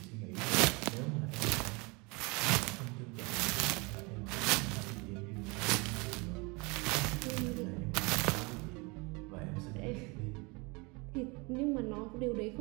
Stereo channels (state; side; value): quieter; left; 28.0 dB